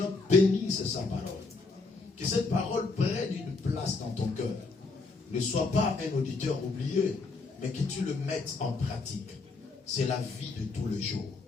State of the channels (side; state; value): right; quieter; 3.9 dB